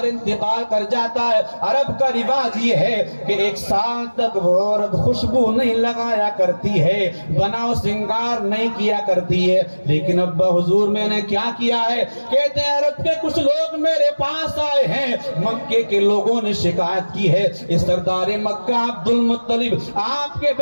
انتقال کر جاتا ہے عرب کا رواج یہ ہے کہ 1 سال تک وہ عورت خوشبو نہیں لگایا کرتی ہے، بناؤ سنگار نہیں کیا کرتی ہے۔ لیکن ابا حضور میں نے کیا کیا ہے؟ کہتے ہیں عرب کے کچھ لوگ میرے پاس آئے ہیں، مکے کے لوگوں نے شکایت کی ہے اس سردار مکہ عبد المطلب آپ کے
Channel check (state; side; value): inverted; both; correlation -1.00